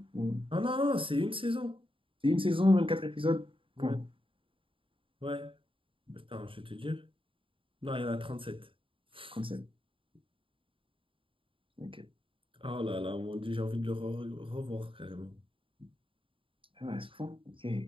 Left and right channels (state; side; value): late; left; 0.25 ms